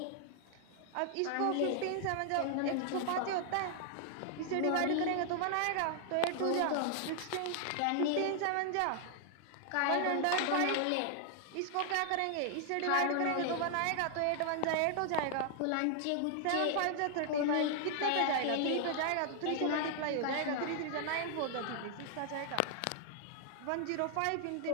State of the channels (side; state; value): both; different; correlation 0.00